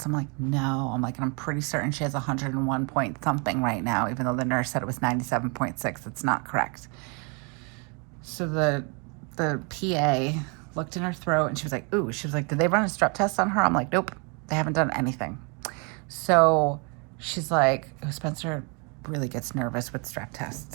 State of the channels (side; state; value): left; quieter; 33.6 dB